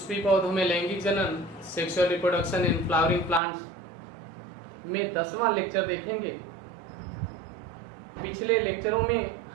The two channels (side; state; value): left; drops out; at 3.4 s